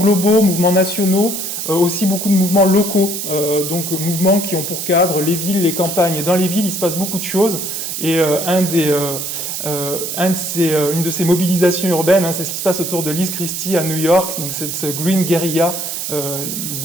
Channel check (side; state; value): right; noise; hiss, 4 dB below the sound